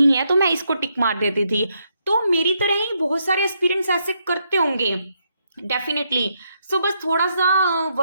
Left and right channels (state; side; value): inverted; both; correlation -0.78